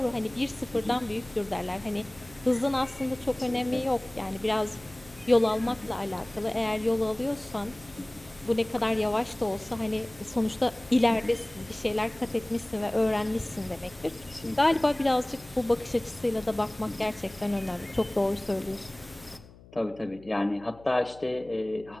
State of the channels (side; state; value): left; noise; hum, 22 dB below the sound